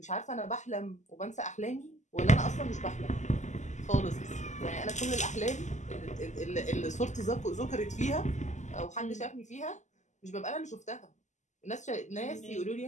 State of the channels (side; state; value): right; late; 0.34 ms